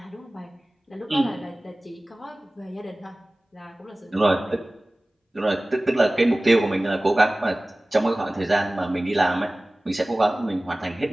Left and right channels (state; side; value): normal; both; correlation 0.98